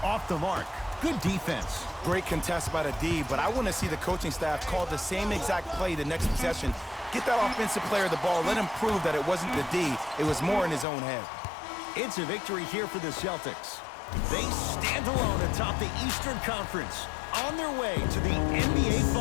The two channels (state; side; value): drops out; right; at 10.9 s